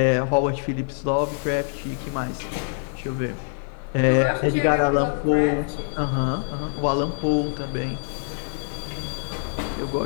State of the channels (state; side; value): silent; right; 60 dB below the other